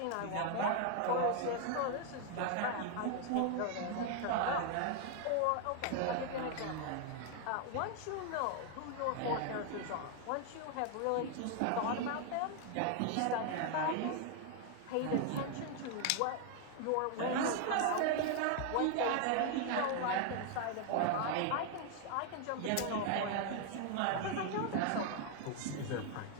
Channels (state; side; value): different; both; correlation 0.00